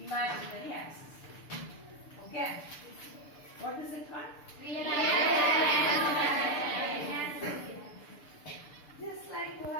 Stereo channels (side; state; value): right; late; 6.8 ms